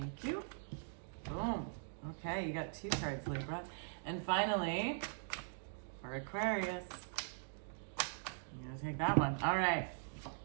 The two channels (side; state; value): left; silent; digital silence